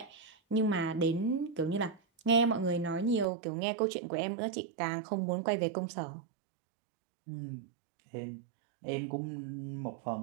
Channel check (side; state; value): left; drops out; at 3.2 s